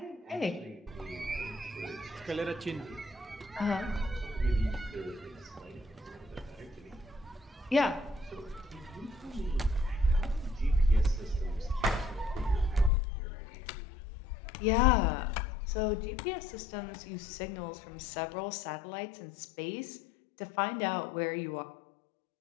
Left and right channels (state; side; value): drops out; right; at 12.9 s